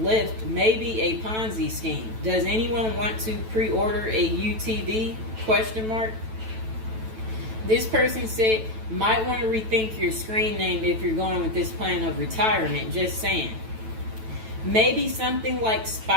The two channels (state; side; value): late; left; 9.1 ms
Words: maybe a Ponzi scheme. Does anyone want to pre-order a UTV? Question mark. This person said, might want to rethink your screen name if you're going with this plan of retirement. Just saying. Maybe something like